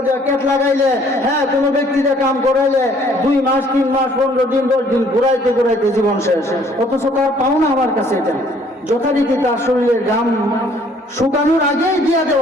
দিয়ে কেট লাগাইলে, হ্যাঁ কোনো ব্যক্তিতে কাম করাইলে 2 মাস 3 মাস 15 দিন 10 দিন ঘুরাইতে ঘুরাইতে জীবন শেষ, অথচ তার পাও না আমার কাছে। এটা যথারীতি তার শরীরের ঘাম শুকানোর আগেই দিয়ে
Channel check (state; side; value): normal; both; correlation 0.60